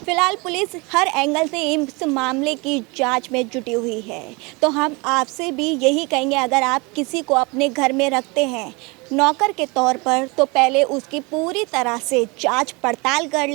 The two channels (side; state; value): left; quieter; 27.4 dB